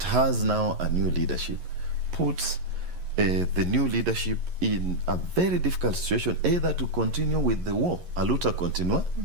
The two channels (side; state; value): left; late; 11 ms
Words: has now a new leadership puts the new leadership in a very difficult situation, either to continue with the war, a luta continua,